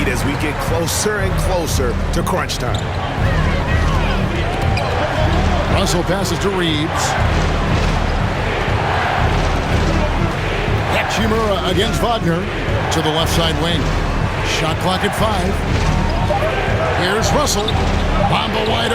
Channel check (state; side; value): identical; both; correlation 1.00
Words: as we get closer and closer to crunch time. Russell passes to Reeves. Hachimura against Wagner to the left side wing. Shot clock at 5. Here's Russell. Bamba wide